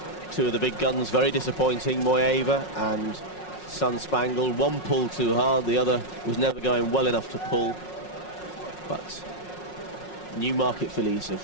Two of the big guns very disappointing, Moyeva and Sun Spangled. One pulled too hard, the other was never going well enough to pull. But Newmarket fillies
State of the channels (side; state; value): right; late; 5.5 ms